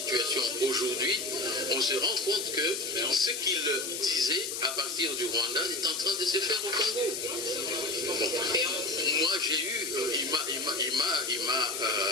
aujourd'hui, on se rend compte que ce qu'il disait à partir du Rwanda est en train de se faire au Congo. Bon. Moi, il m'a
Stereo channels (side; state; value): left; noise; hiss, 4 dB below the sound